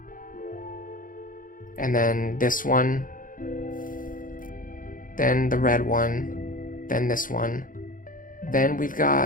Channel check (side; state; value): right; late; 0.40 ms